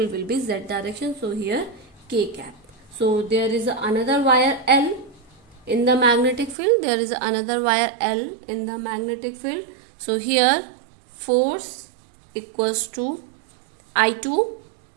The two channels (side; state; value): left; drops out; at 6.6 s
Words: will be z direction. So here k cap. So there is another wire L in the magnetic field. There is another wire L in the magnetic field. So here force equals to I2